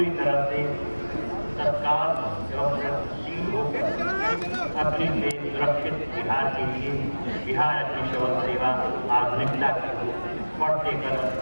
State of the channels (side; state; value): both; inverted; correlation -1.00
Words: तरह से सरकार एवं प्रगतिशील होकर अग्नि से सुरक्षित बिहार के लिए बिहार अग्निशमन सेवा आधुनिकता की बढ़ते कदम